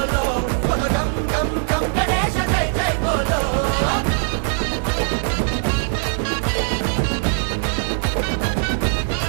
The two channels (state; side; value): silent; left; 65 dB below the other